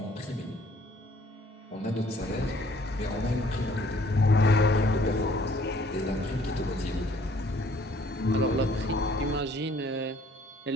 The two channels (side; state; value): both; normal; correlation 0.60